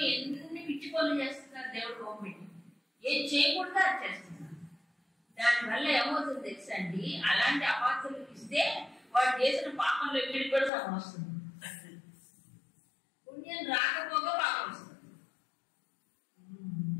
ఎన్ని పిచ్చి పనులు చేస్తున్నారు దేవుడు బొమ్మ పెట్టి. ఏం చేయకుండా అది చేస్తున్నారు. దానివల్ల ఏమవుతుంది తెలుసా అండి? అలాంటి అపాత్రలకు ఇస్తే వాడు చేసిన పాపంలో ఇక్కడికి కూడా సగం వస్తుంది. పుణ్యం రాకపోగా పాపం వస్తుంది.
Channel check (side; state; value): right; drops out; at 10.7 s